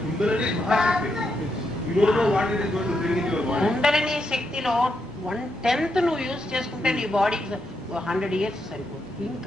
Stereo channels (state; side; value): normal; both; correlation 0.82